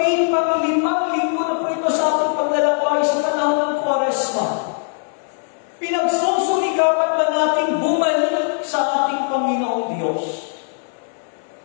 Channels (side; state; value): right; silent; digital silence